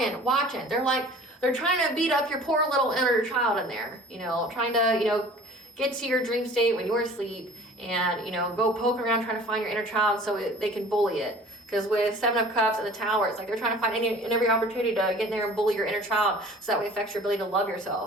watching. They're trying to beat up your poor little inner child in there, you know, trying to, you know, get to your dream state when you're asleep and, you know, go poking around trying to find your inner child so they can bully it. Because with Seven of Cups and the Tower, it's like they're trying to find any and every opportunity to get in there and bully your inner child so that way it affects your ability to love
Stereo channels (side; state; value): both; normal; correlation 0.46